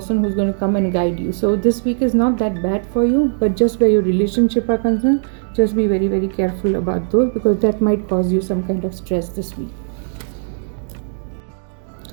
who's going to come and guide you. So this week is not that bad for you, but just where your relationship are concerned, just be very, very careful about those, because that might cause you some kind of stress this week.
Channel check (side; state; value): left; silent; digital silence